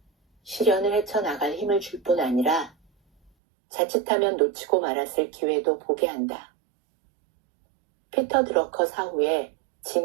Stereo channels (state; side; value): drops out; left; at 3.3 s